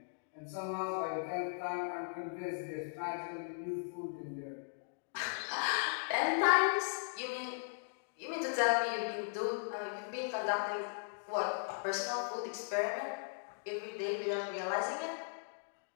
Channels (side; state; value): right; silent; digital silence